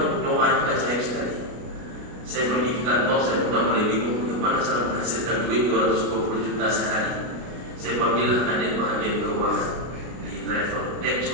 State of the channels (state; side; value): late; left; 33 ms